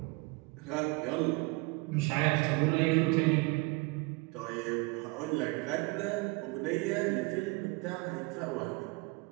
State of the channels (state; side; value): quieter; left; 26.2 dB